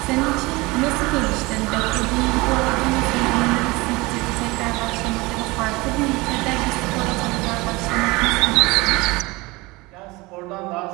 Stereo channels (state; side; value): quieter; left; 22.9 dB